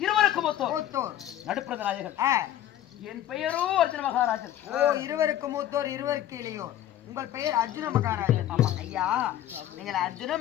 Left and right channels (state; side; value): quieter; right; 12.1 dB